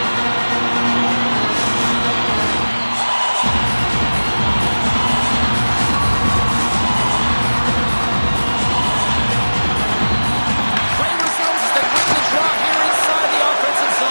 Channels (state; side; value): inverted; both; correlation -1.00